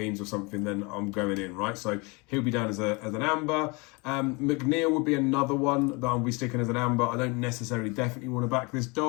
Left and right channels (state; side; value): quieter; right; 28.6 dB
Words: or something, then I'm going in, right? So he'll be down as an amber. McNeil would be another one that I'll be sticking as an amber. I don't necessarily definitely want to back this